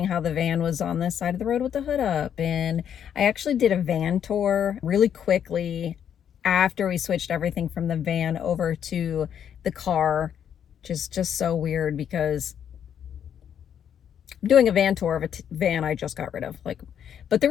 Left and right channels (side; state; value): right; quieter; 8.9 dB